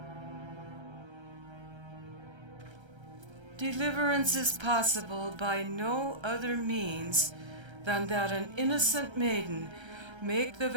Deliverance is possible by no other means than that an innocent maiden make the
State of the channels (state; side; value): late; left; 1.3 ms